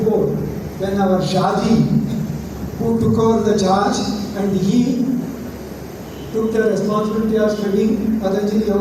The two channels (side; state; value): both; identical; correlation 1.00